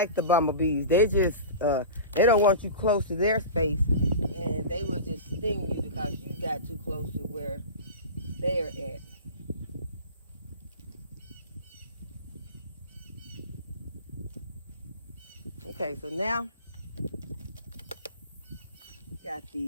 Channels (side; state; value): both; inverted; correlation -0.32